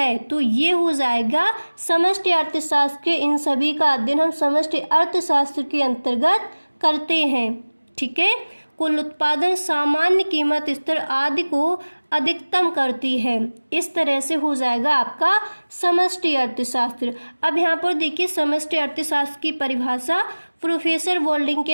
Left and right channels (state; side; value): inverted; both; correlation -1.00